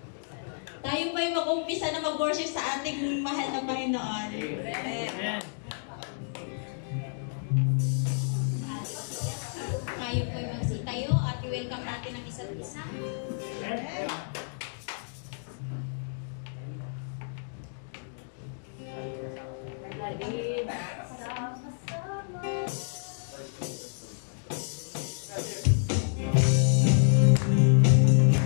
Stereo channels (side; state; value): right; silent; digital silence